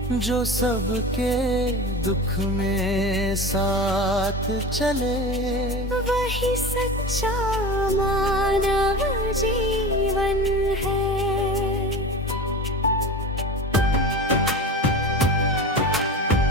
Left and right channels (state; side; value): normal; both; correlation 0.30